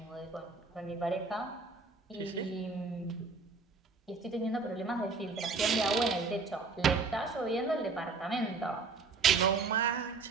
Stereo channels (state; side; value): quieter; left; 4.3 dB